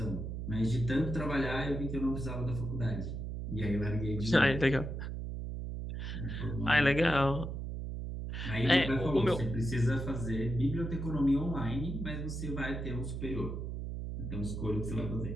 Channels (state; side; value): noise; right; hum, 5 dB below the sound